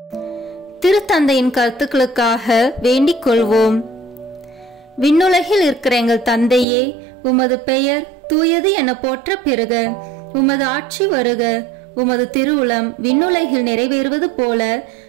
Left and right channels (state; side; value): drops out; left; at 6.7 s